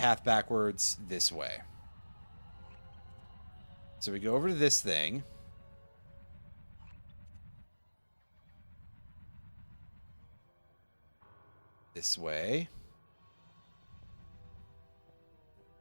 backwards this way. So we go over to this thing. This way.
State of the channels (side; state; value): both; inverted; correlation -1.00